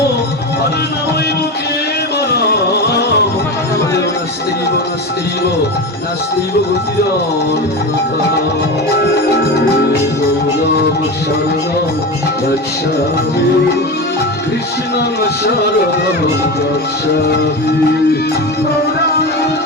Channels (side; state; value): both; normal; correlation 0.23